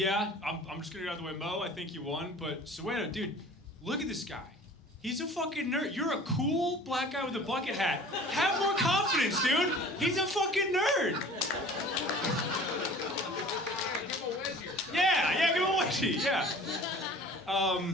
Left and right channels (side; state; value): both; normal; correlation 0.45